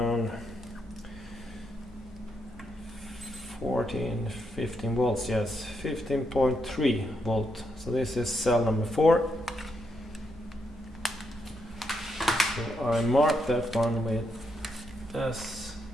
15 volts, yes, 15.3 volt. So this is cell number 4. So I mark that one with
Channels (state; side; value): normal; both; correlation 0.80